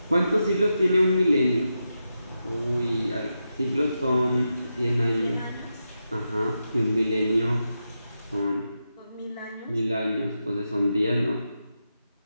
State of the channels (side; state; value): both; inverted; correlation -0.88